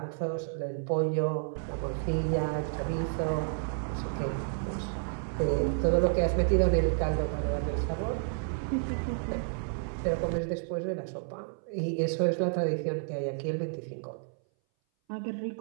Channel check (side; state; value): left; silent; 57 dB below the other